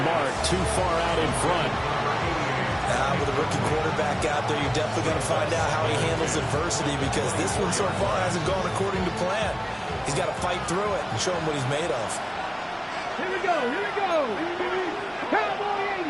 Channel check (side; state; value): both; identical; correlation 1.00